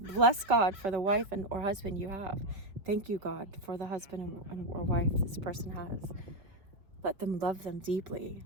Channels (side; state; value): left; late; 4.9 ms